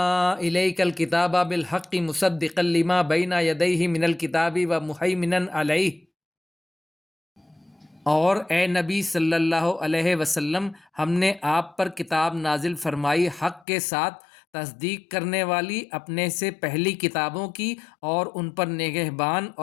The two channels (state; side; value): drops out; right; at 13.7 s